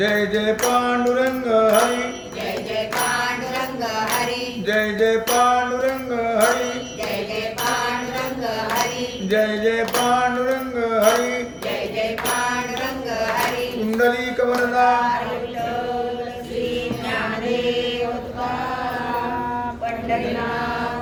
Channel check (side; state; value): both; identical; correlation 1.00